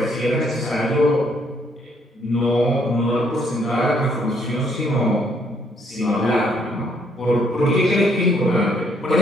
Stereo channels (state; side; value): normal; both; correlation 0.68